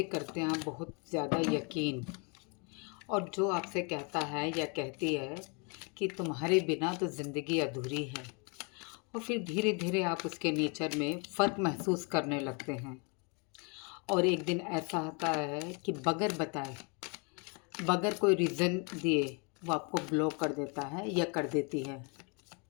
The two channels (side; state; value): right; quieter; 33.8 dB